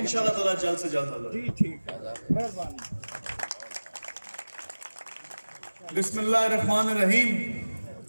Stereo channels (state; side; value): inverted; both; correlation -1.00